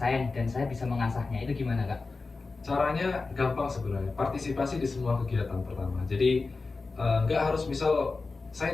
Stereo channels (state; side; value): quieter; right; 3.9 dB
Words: nih, dan saya bisa mengasahnya. Itu gimana Kak? Caranya gampang sebenarnya, partisipasi di semua kegiatan pertama. Jadi nggak harus misal